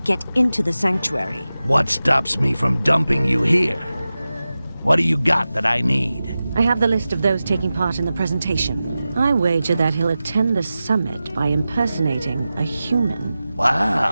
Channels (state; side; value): inverted; both; correlation -0.94